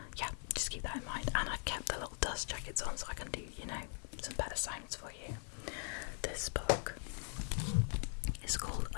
yeah, just keep that in mind. And I've kept the little dust jackets on so I can do, some better sounds for you. This book is called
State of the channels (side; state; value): right; silent; 51 dB below the other